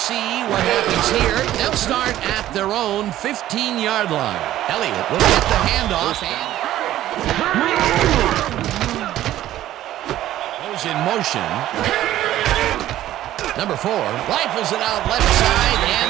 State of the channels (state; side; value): quieter; left; 13.6 dB